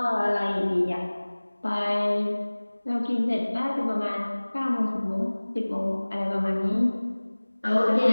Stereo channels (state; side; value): inverted; both; correlation -1.00